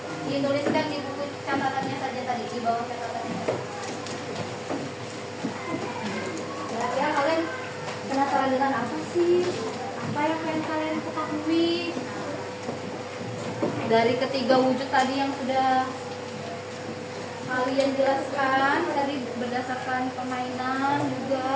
Dituliskan di buku catatannya saja tadi, di bawah catatannya. Kira-kira kalian penasaran dengan apa sih? Apa yang pengen kalian ketahui? Dari ketiga wujud tadi yang sudah kalian jelaskan tadi berdasarkan permainan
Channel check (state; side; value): identical; both; correlation 1.00